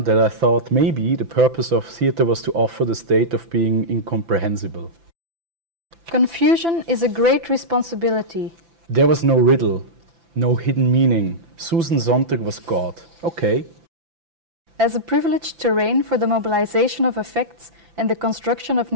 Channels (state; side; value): late; left; 5.9 ms